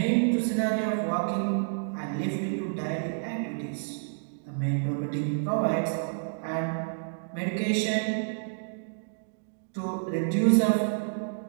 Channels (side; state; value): left; silent; digital silence